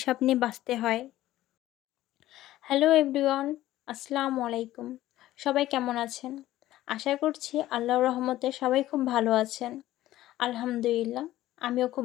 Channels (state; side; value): quieter; right; 14.9 dB